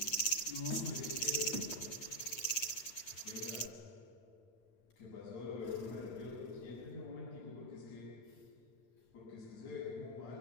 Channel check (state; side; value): late; right; 8.7 ms